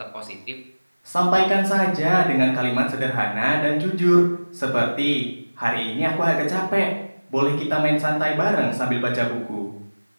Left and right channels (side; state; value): both; inverted; correlation -1.00